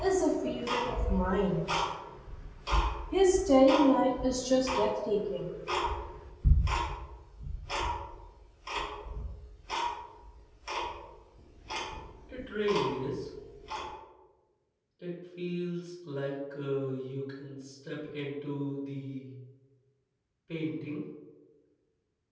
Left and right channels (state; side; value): identical; both; correlation 1.00